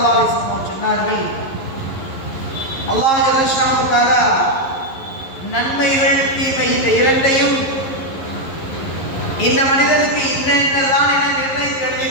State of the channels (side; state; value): right; late; 11 ms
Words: அலைஹி வஸல்லம் சொன்னார்கள், அல்லாஹ் ஜல்லஷானஹு தஆலா நன்மைகள் தீமை இந்த இரண்டையும் இந்த மனிதனுக்கு இன்னதான் என நிர்ணயித்து